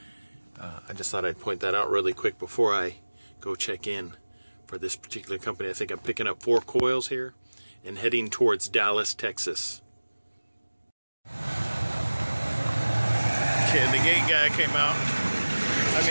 I just thought I'd point that out really quick before I go check in for this particular company. I think I'm picking up 4 coils here and heading towards Dallas, Texas. Okay, the gate guy came out. I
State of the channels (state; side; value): inverted; both; correlation -1.00